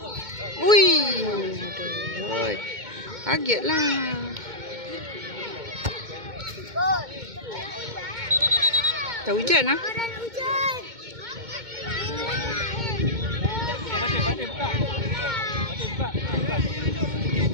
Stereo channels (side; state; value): left; late; 2.2 ms